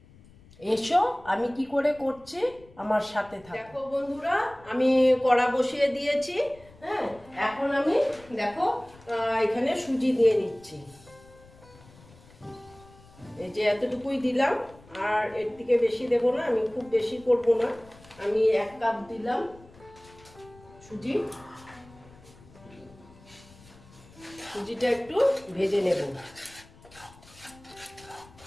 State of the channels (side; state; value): left; noise; rumble, 24 dB below the sound